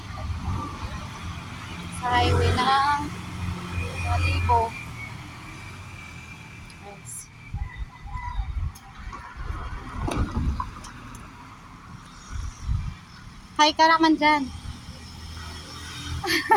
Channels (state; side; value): identical; both; correlation 1.00